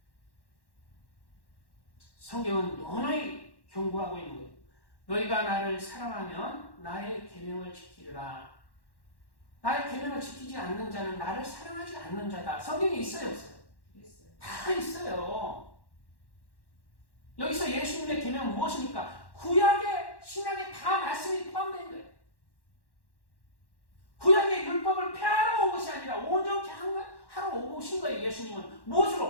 성경은 너무너무 경고하고 있는 거예요. 너희가 나를 사랑하면 나의 계명을 지키리라. 나의 계명을 지키지 않는 자는 나를 사랑하지 않는 자다. 성경에 있어요, 없어요? 있어요. 다 있어요. 여기서 예수님의 계명은 무엇입니까? 구약의 신약에 다 말씀이 포함된 거예요. 구약의 율법을 폐하러 온 것이 아니라 온전케 하러 오신 거예요. 예수님은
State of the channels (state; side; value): late; right; 1.1 ms